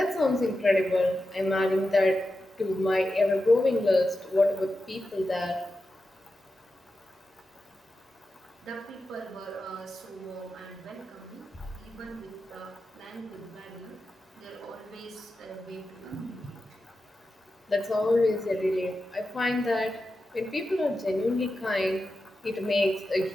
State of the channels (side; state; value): both; normal; correlation 0.91